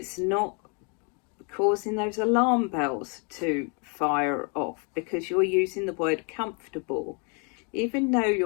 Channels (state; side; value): quieter; right; 36.7 dB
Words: not causing those alarm bells to fire off because you're using the word comfortable. Even though